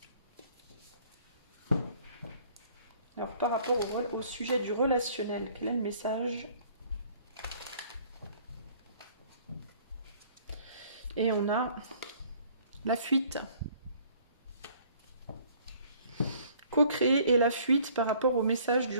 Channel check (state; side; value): inverted; both; correlation -0.57